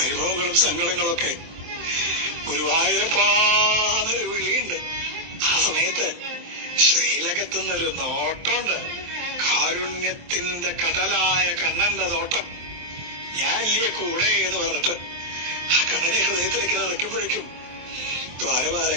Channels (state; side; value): late; left; 23 ms